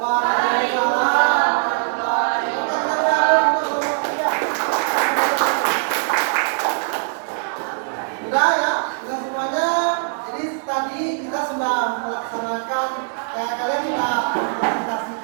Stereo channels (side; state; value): left; silent; digital silence